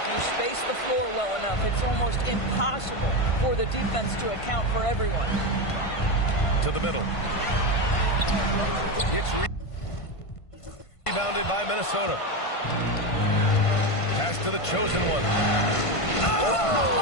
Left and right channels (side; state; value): right; late; 1.5 ms